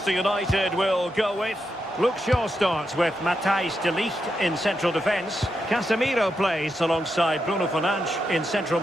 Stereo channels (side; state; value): both; normal; correlation 0.85